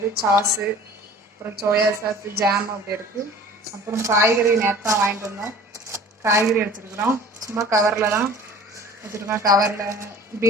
சாஸு, அப்புறம் சோயா சாஸு, ஜாம் அப்படி இருக்குது. அப்புறம் காய்கறி நேற்று வாங்கிட்டு வந்தோம், காய்கறி வச்சுருக்குறோம். சும்மா கவரில் தான் வச்சுருக்கோம். கவரில்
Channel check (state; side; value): normal; both; correlation 0.45